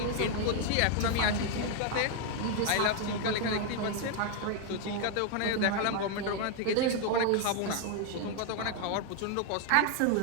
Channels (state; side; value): different; both; correlation 0.00